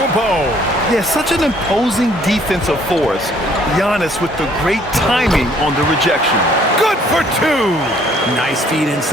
Yeah, such an imposing defensive force. Giannis with the great timing on the rejection. Good for 2. Nice feed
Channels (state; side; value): normal; both; correlation 0.61